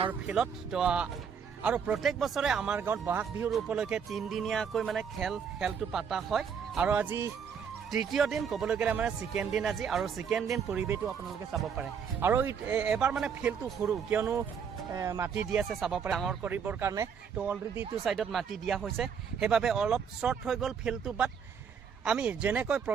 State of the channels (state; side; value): quieter; left; 6.9 dB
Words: ফিল্ডত তো আৰু প্ৰত্যেক বছৰে আমাৰ গাঁৱত বহাগ বিহুৰ উপলক্ষে 3 দিনীয়াকৈ মানে খেলটো পাতা হয় আৰু আজি তৃতীয় দিন ক'বলৈ গ'লে মানে সেকেন্ড দিন আজি আৰু সেকেন্ড দিন পৰিবেশটো আপোনালোকে চাব পাৰে আৰু এবাৰ মানে ফিল্ডটো সৰু কিয়নো মাটি দি আছে চাব পাৰে ডাঙৰ কৰিবৰ কাৰণে তো অলৰেডি টু সাইডত মাটি দিয়া হৈছে হেবাবে অলপ শৰ্ট হৈ গ'ল ফিল্ডটো বাট আমি যেনেকৈ